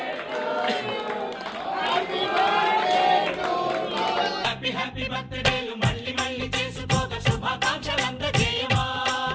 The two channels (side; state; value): both; identical; correlation 1.00